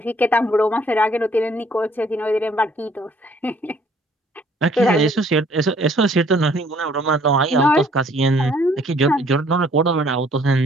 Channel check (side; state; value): both; normal; correlation 0.61